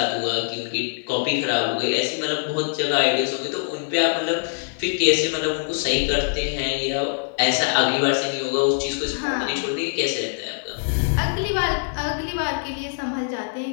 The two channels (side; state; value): right; silent; 63 dB below the other